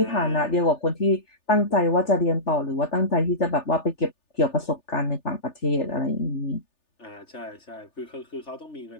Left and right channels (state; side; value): late; right; 3.4 ms